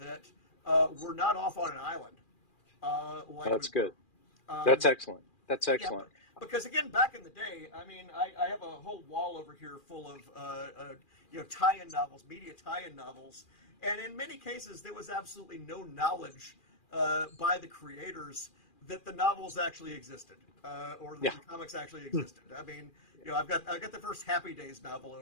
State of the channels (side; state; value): right; late; 2.4 ms